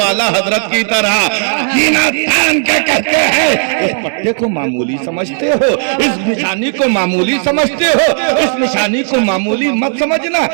اعلیٰ حضرت کی طرح سینہ تان کے کہتے ہیں. اس پٹے کو معمولی سمجھتے ہو، اس نشانی کو معمولی سمجھتے ہو، اس نشانی کو معمولی مت سمجھنا،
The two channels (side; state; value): left; silent; digital silence